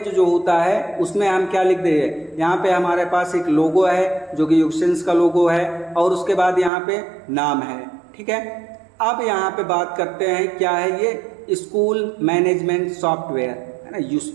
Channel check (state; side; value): drops out; left; at 6.7 s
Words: जो होता है उसमें हम क्या लिख देंगे। यहाँ पे हमारे पास एक लोगो है जो कि यूसेंस का लोगो है और उसके बाद यहाँ पे नाम है, ठीक है। अब यहाँ पे बात करते हैं क्या है ये school management software,